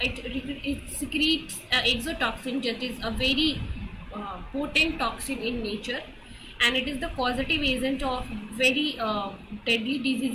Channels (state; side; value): identical; both; correlation 1.00